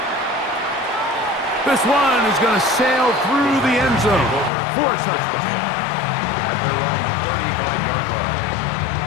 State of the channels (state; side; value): drops out; right; at 4.5 s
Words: This one is going to sail through the end zone for a touchdown. At their own 35-yard line.